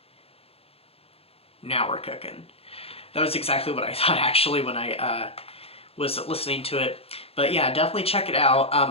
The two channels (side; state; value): right; late; 0.28 ms